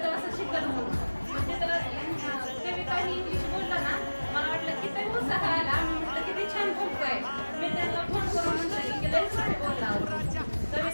तर असं शिकत म्हणून, म्हणजे तर कविता ही इंग्लिश बोलला ना, मला वाटलं की ते उत्साह आला. मी म्हटलं किती छान बोलतोय. मी त्यांना फोन करून म्हटलं की लय छान बोलला,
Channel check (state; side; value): inverted; both; correlation -1.00